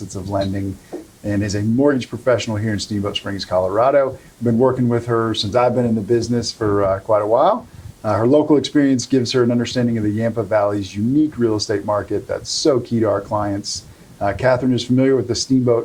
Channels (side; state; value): both; identical; correlation 1.00